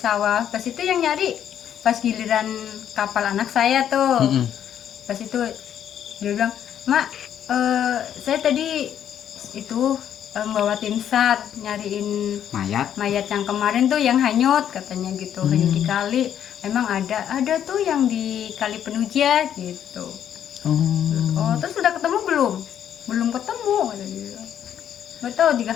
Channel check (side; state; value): right; quieter; 9.8 dB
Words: Pas itu yang nyari pas giliran kapal anak saya tuh. Pas itu dia bilang, "Mak, saya tadi itu bawa tim SAR nyariin mayat yang kemarin tuh yang hanyut," katanya gitu. Hanyut di kali. Emang ada tuh yang di Kali Penuja gitu. Oh, terus sudah ketemu belum? Belum ketemu, kata dia. Nggak tahu 3